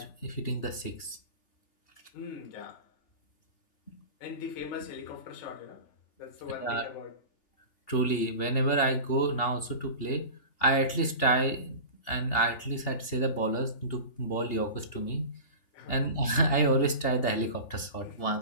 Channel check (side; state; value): right; late; 2.8 ms